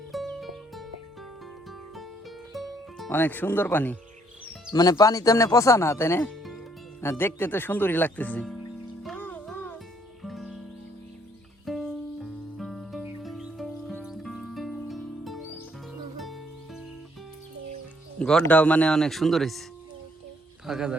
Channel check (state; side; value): normal; both; correlation 0.67